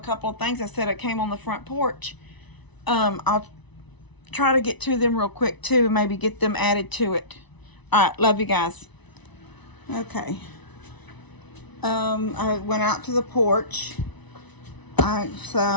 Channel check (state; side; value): late; right; 1.0 ms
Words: couple of things I said that came on the front porch. I'll try to get to them real quick too, maybe get them added to it. All right, love you guys. Okay. I went out to the porch.